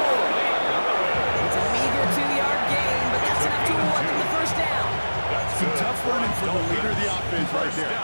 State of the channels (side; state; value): both; inverted; correlation -1.00